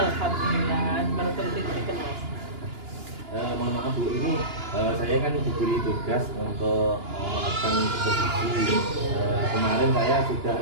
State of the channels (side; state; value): left; late; 2.9 ms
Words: mantul diberikan Mas. Mohon maaf Bu, ini saya kan diberi tugas untuk melakukan supervisi. Kemarin saya sudah